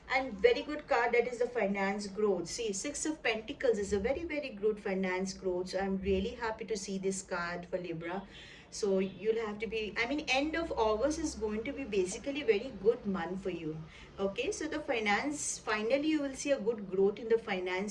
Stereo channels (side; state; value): both; identical; correlation 1.00